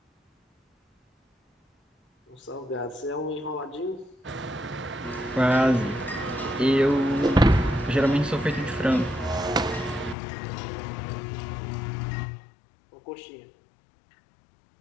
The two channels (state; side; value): drops out; right; at 10.2 s